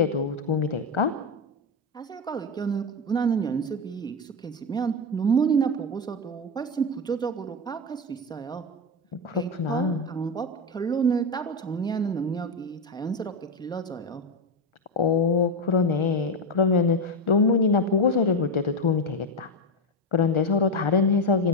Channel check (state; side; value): normal; both; correlation 0.11